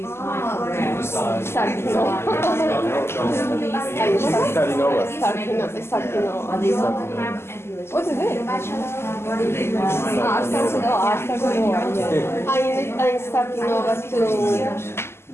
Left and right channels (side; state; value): right; late; 0.12 ms